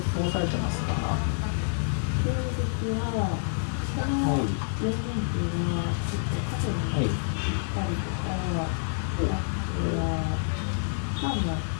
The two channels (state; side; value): silent; right; digital silence